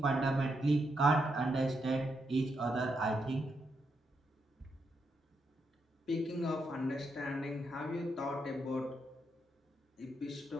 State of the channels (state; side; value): normal; both; correlation 0.81